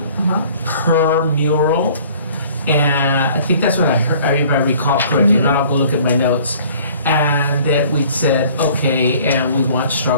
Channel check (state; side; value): inverted; both; correlation -0.52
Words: per mural. And I think that's what I heard, if I recall correctly. If not, I'll go look at my notes. And that we said, okay, and we want to